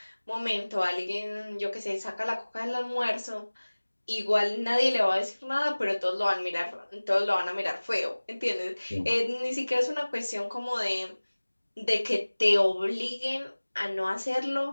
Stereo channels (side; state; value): both; inverted; correlation -1.00